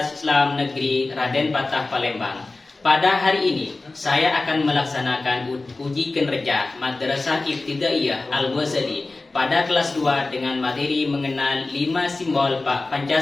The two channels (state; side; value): quieter; right; 3.3 dB